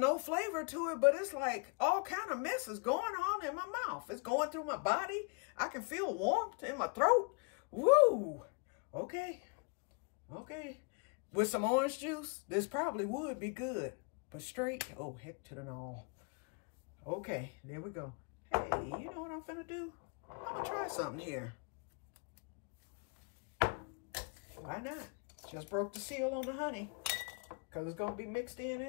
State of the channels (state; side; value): quieter; right; 35.1 dB